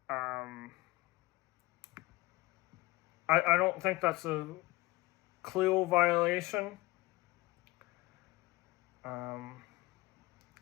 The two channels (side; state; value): right; quieter; 20.6 dB